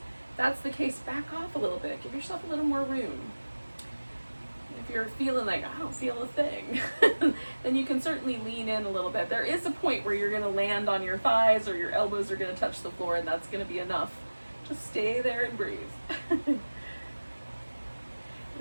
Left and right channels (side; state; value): both; inverted; correlation -1.00